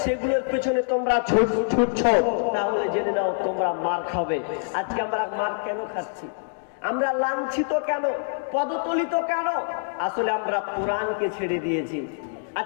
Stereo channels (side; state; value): right; silent; digital silence